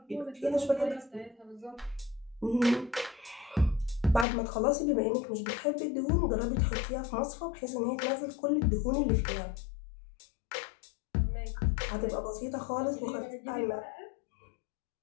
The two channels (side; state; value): right; drops out; at 4.2 s